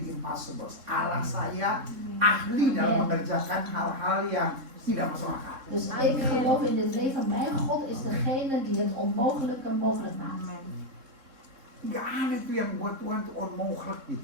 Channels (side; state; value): left; late; 3.7 ms